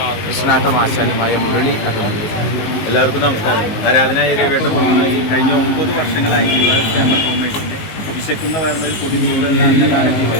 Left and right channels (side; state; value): right; late; 19 ms